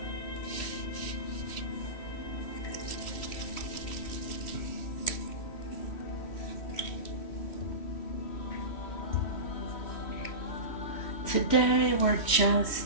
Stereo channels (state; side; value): late; right; 3.1 ms